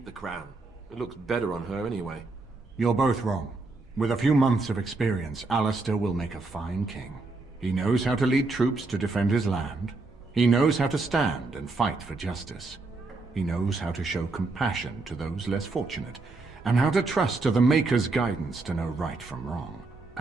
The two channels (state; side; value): quieter; left; 3.5 dB